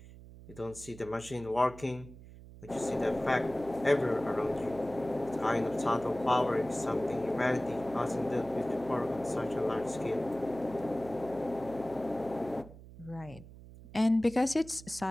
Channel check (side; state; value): right; noise; hum, 17 dB below the sound